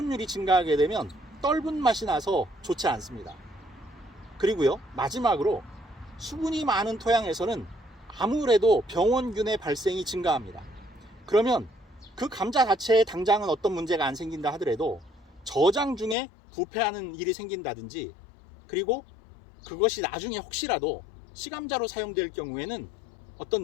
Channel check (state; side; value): drops out; right; at 16.2 s